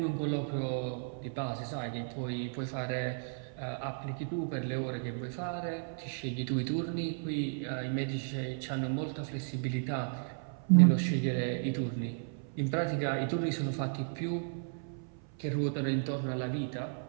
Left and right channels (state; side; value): silent; left; 55 dB below the other